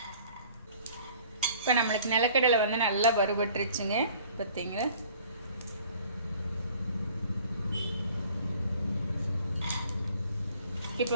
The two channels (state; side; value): inverted; both; correlation -0.52